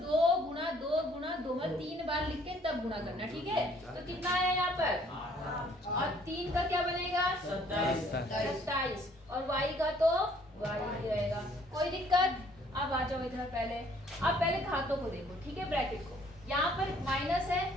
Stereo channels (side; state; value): both; normal; correlation 0.60